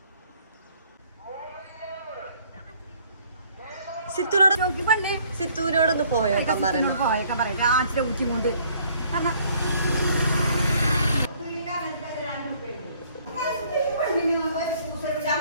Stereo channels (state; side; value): inverted; both; correlation -0.61